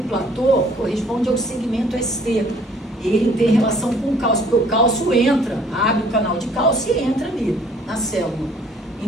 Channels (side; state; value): both; normal; correlation 0.58